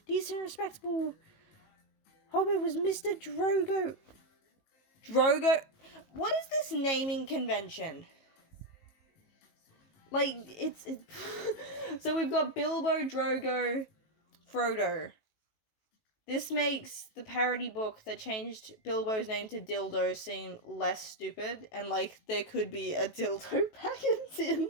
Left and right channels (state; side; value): late; right; 19 ms